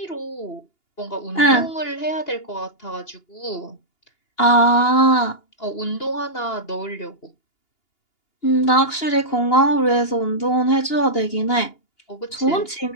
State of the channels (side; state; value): right; late; 2.8 ms